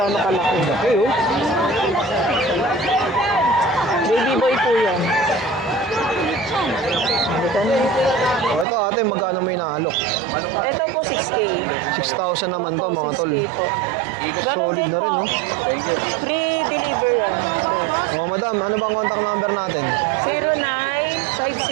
kalaki. Okay, oh. Baby boy po yan. Halika na. Ito, ate, magkano may naalok? Ito po 6K. 6,000 naman to, Opo, mga tol. 6K po. Ganon din po. Free deliver yan. boss. Oh, madam, ano bang contact number natin?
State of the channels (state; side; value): drops out; left; at 8.7 s